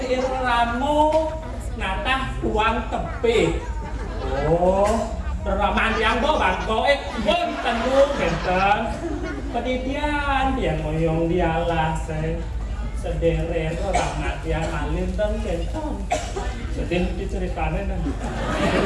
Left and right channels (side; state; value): both; identical; correlation 1.00